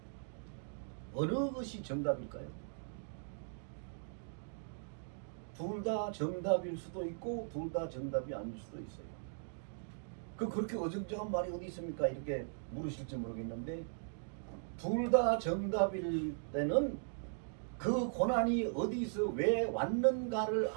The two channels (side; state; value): left; silent; digital silence